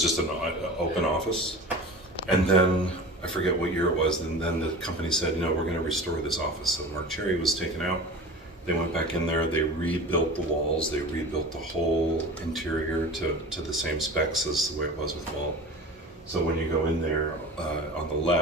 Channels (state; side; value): normal; both; correlation 0.35